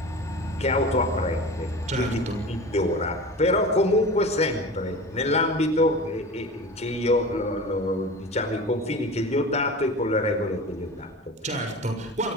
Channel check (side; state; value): both; normal; correlation 0.34